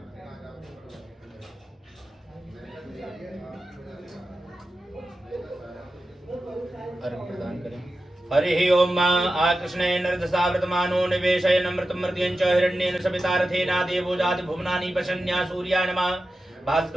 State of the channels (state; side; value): normal; both; correlation 0.92